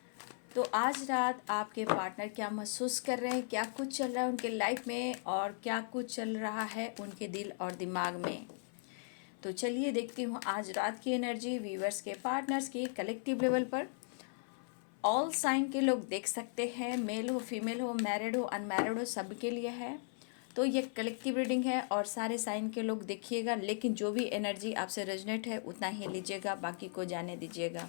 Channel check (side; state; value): right; silent; 53 dB below the other